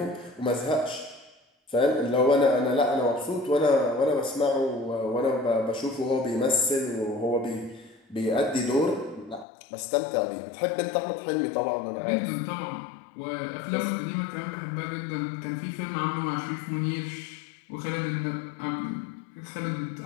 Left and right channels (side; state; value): right; drops out; at 9.5 s